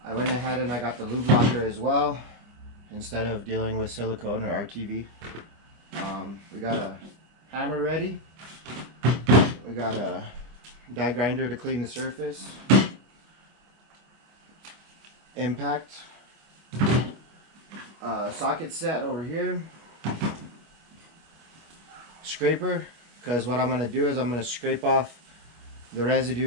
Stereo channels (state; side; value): late; left; 25 ms